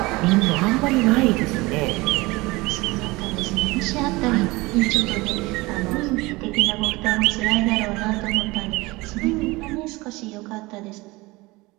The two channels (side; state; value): left; quieter; 22.2 dB